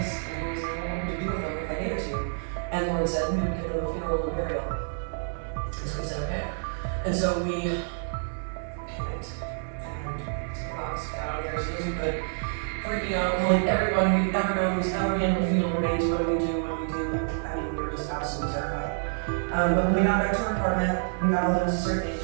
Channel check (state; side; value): silent; left; digital silence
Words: And he was like, well, what would you do with them if I gave it to you? And Lauren said, we would give them a funeral and burial. And so we said, okay. And so we panicked and took the box, got out there as soon as we could, freaking out, calling everyone we've ever known who's ever handled funeral remains. What do we do? What do we do? I mean, we were just absolutely terrified. But when we got back to our apartment, we got all the necessary